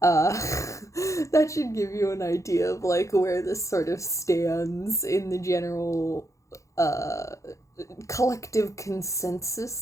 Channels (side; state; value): right; late; 0.15 ms